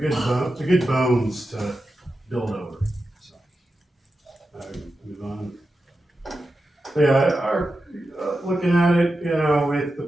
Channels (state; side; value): normal; both; correlation 0.91